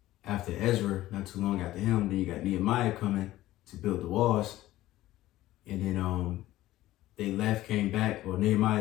after Ezra, not too long after him, then you got Nehemiah coming to build the walls. And then they left, came back, or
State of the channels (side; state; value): right; quieter; 15.6 dB